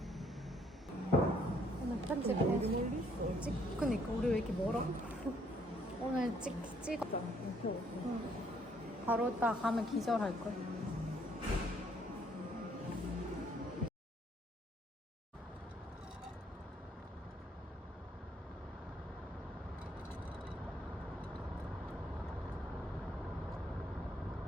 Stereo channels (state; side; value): normal; both; correlation 0.67